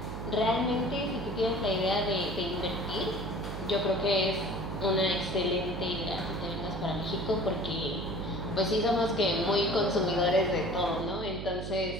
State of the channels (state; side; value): noise; right; hum, 6 dB below the sound